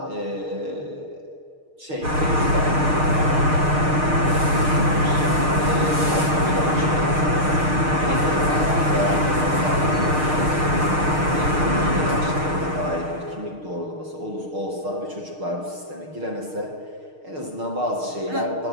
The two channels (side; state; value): left; late; 6.5 ms